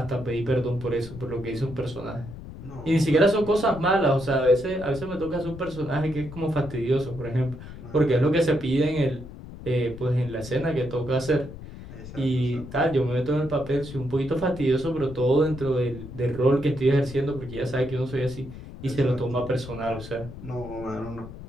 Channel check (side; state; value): left; noise; rumble, 13 dB below the sound